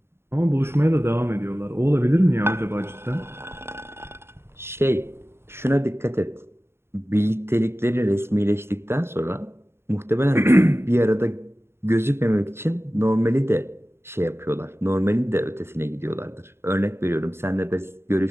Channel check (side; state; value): left; late; 0.12 ms